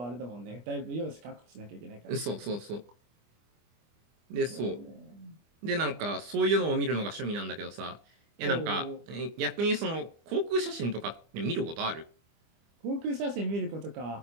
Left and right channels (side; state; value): left; late; 25 ms